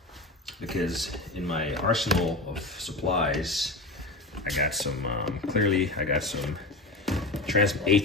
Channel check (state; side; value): normal; both; correlation 0.25